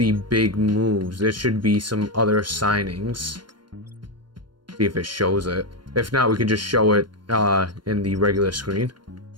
big moves? There should be some other signings. See if it shows it. If not, we can just show it in the regular screen.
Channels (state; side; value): late; left; 0.72 ms